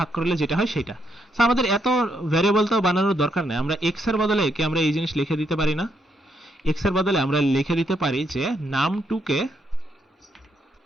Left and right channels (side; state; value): both; normal; correlation 0.76